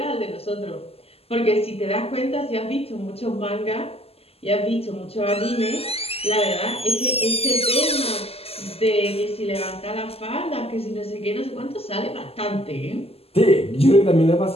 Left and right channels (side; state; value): right; late; 0.29 ms